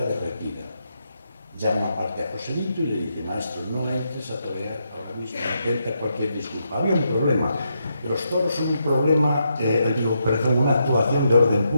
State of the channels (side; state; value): both; inverted; correlation -0.81